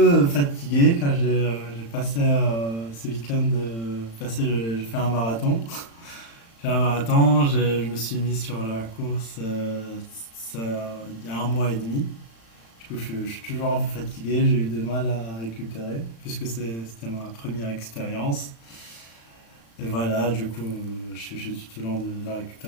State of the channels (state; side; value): late; right; 35 ms